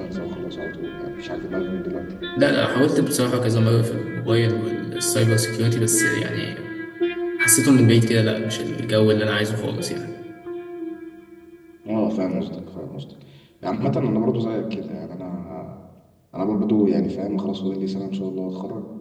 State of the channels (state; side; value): identical; both; correlation 1.00